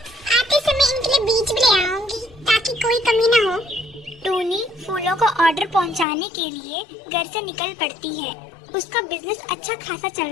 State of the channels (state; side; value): drops out; right; at 6.1 s